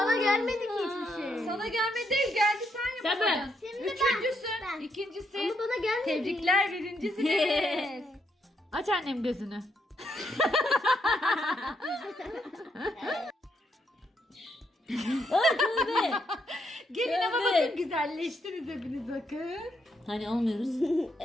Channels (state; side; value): normal; both; correlation 0.77